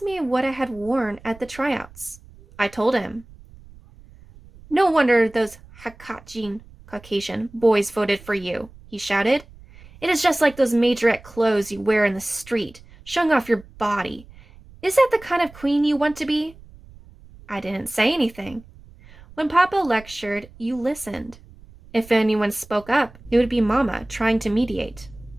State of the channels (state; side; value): noise; right; rumble, 22 dB below the sound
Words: me what I had worn at the tryouts. I told him. No wonder those Hakachin Caucasian boys voted for you, he shouted. It is just like those majorette clothes you wear in the street, showing off your body. Is that the kind of queen you want to be? I didn't say anything. When Papa lectured, you listened. If anyone spoke up, it would be Mama trying to mediate.